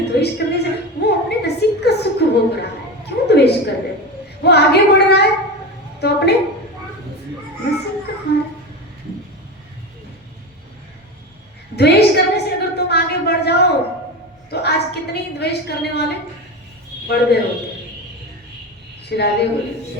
द्वेष करने से वो अपने नसीब का सुख भोग रहा है। क्यों द्वेष कर रहे? वो आगे बढ़ रहा है तो अपने नसीब का खा रहा। द्वेष करने से अगर तुम आगे बढ़ जाओ तो आज कितने द्वेष करने वाले बढ़ गए होते। श्री राधे बोली,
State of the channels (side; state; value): both; normal; correlation 0.23